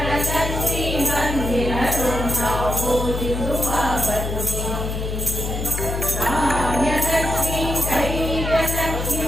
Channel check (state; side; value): noise; left; hum, 3 dB below the sound